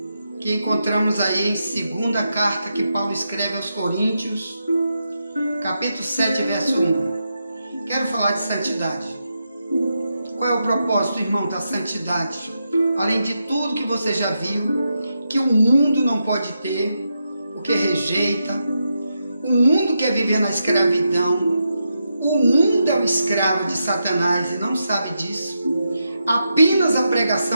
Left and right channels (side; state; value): both; inverted; correlation -0.85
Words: que encontramos aí em segunda carta que Paulo escreve aos Coríntios, capítulo 7, verso 1. Quero falar de santidade. Qual é o propósito, irmão, da santidade? Além de tudo que você já viu, que o mundo não pode ter, o que rejeita, o mundo quer viver na escravidão, o mundo é o escravo de Satanás e não sabe disso. Apenas a